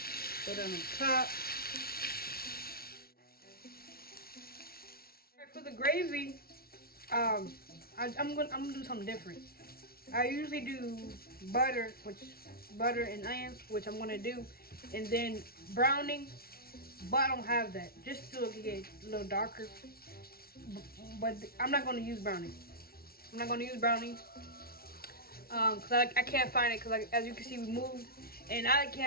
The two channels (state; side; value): late; right; 0.44 ms